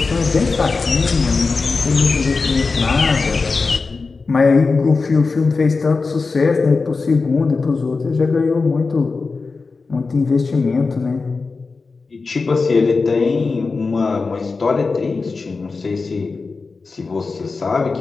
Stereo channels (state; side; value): quieter; right; 4.2 dB